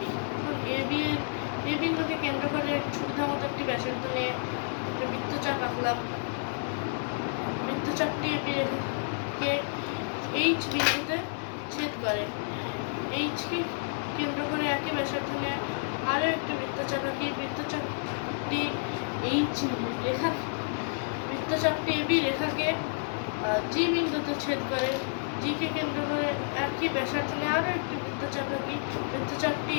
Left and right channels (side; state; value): right; silent; digital silence